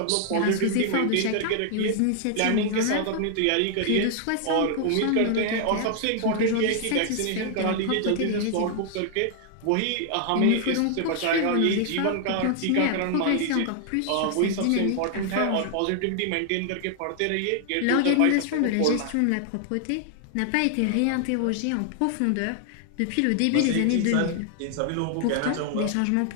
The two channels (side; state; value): both; different; correlation 0.00